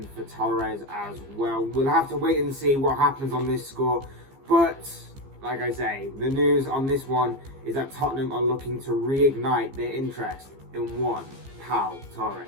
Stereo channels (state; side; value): late; left; 15 ms